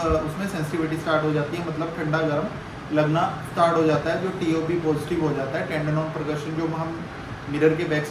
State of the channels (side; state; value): both; identical; correlation 1.00